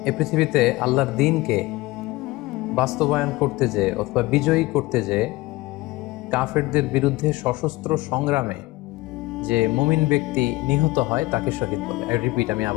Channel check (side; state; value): right; quieter; 20.1 dB